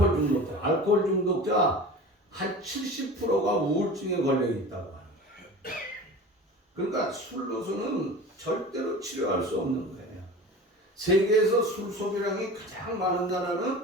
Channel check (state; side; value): normal; both; correlation 0.36